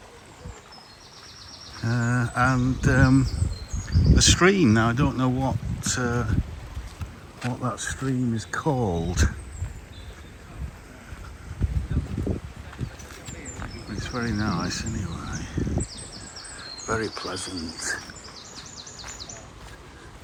And a stream. Now I don't know what that stream is called. It's very nice anyway. Very pleasant.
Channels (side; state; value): both; identical; correlation 1.00